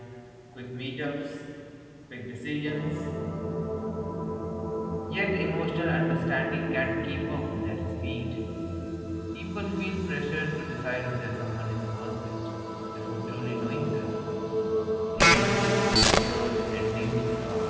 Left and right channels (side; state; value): both; identical; correlation 1.00